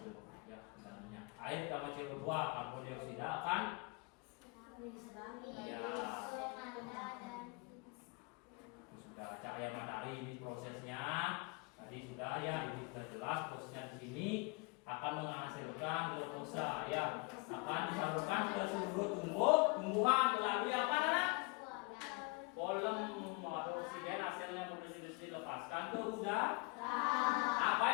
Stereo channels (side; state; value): right; quieter; 28.2 dB